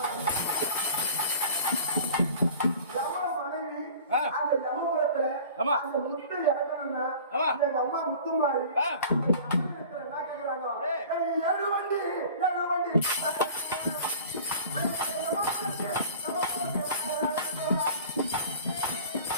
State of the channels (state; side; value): inverted; both; correlation -0.43